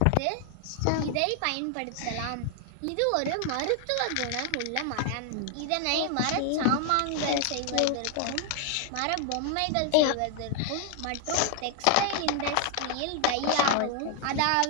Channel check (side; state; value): both; different; correlation 0.00